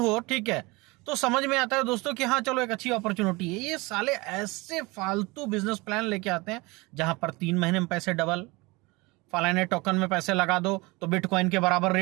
ठीक है, तो समझ में आता है दोस्तों कि हाँ चलो एक अच्छी अपॉर्चुनिटी है। ये साले ऐसे फालतू बिजनेस प्लान लेके आते हैं जहां पर 3 महीने में पैसे डबल, फलाने टोकन में पैसे लगा दो तो बिटकॉइन के बराबर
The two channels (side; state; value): left; quieter; 24.2 dB